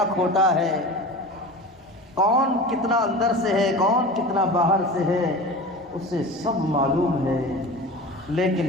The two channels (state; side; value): normal; both; correlation 0.34